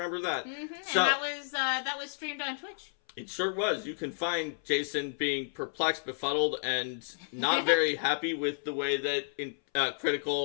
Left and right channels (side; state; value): right; silent; 57 dB below the other